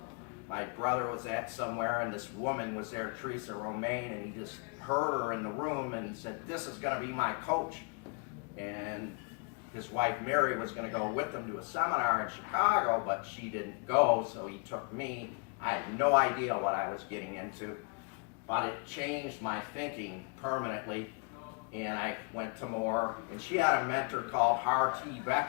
My brother was at somewhere, and this woman was there, Teresa Romaine, and he just heard her in the room, and he said, this is going to be my coach. And his wife Mary was going to go with him to a seminar in Chicago, but she didn't go, so he took me. I had no idea what I was getting into, but it changed my thinking permanently, and I went to more. And she had a mentor called Hartee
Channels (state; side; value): quieter; right; 36.9 dB